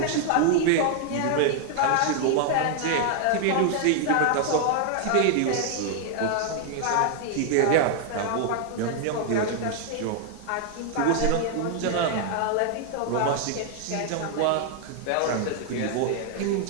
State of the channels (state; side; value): different; both; correlation 0.00